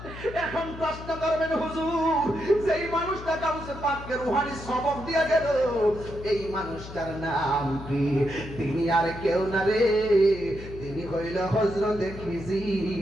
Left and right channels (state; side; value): noise; left; hum, 12 dB below the sound